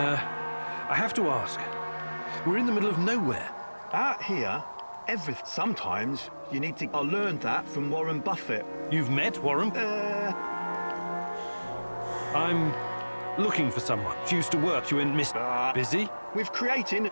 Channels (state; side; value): inverted; both; correlation -1.00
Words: have to ask. We're in the middle of nowhere. Out here, sometimes you need to... I learned that from Warren Buffett. You've met Warren? I'm looking for someone. She used to work. You in Mr. Busy? With creating